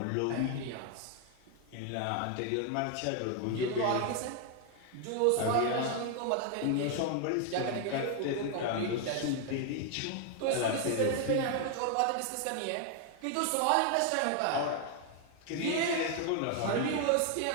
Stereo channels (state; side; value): different; both; correlation 0.00